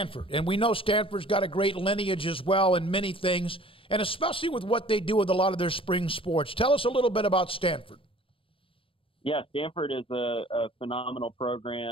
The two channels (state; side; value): late; right; 0.26 ms